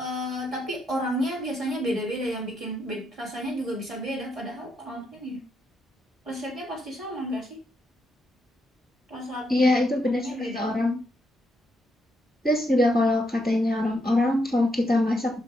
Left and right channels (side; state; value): both; normal; correlation 0.79